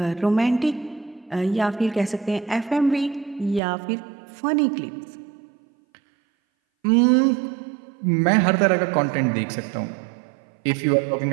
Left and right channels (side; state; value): left; drops out; at 3.6 s